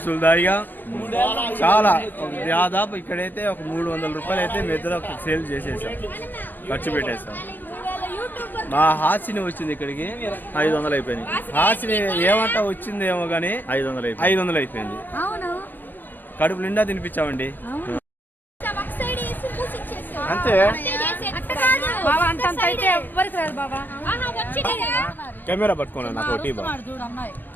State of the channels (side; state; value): right; late; 0.092 ms